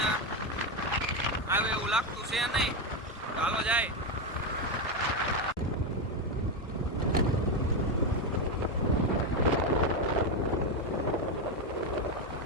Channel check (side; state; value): both; normal; correlation 0.09